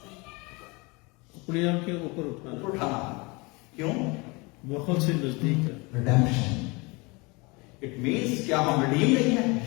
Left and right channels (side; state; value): right; quieter; 26.7 dB